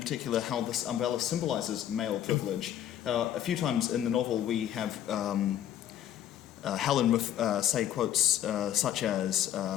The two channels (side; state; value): right; quieter; 10.9 dB